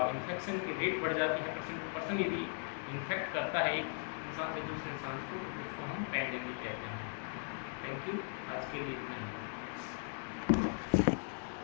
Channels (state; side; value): silent; right; 52 dB below the other